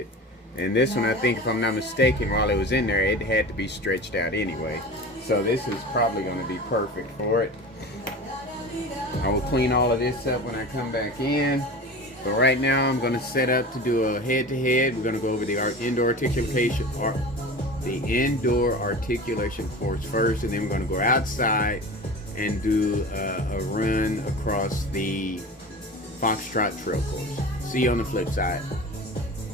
And this one, I think, if I'm not mistaken, while it was in there, it had to be stretched out anyway. So this is probably going to be perfect for it. I will clean all of this up when I come back in. But right now, I'm going to set up to do a head-to-head. We're going to go over the indoor articulation course first, and then we're going to go outside and do a run across the Foxtrot Trail course. See you on the flip side.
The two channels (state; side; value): normal; both; correlation 0.34